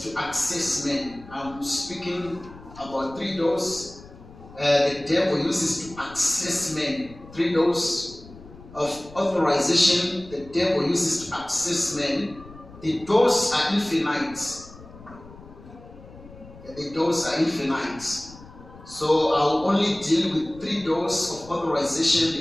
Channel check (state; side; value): noise; left; rumble, 19 dB below the sound